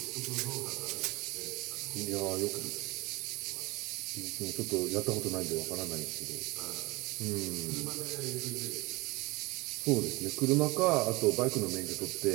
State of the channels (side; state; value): left; quieter; 23.2 dB